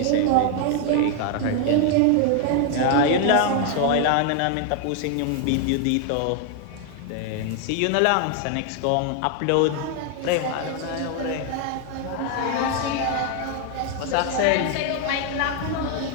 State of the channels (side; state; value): both; different; correlation 0.00